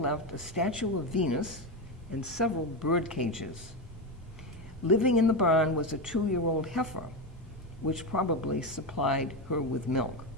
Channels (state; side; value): normal; both; correlation 0.14